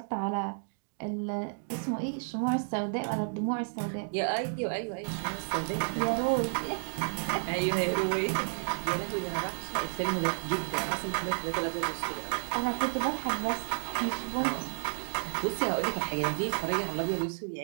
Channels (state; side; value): silent; left; digital silence